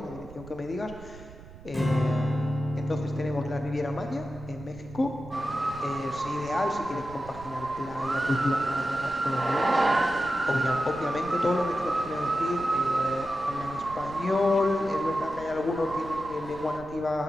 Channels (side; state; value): right; noise; rumble, 17 dB below the sound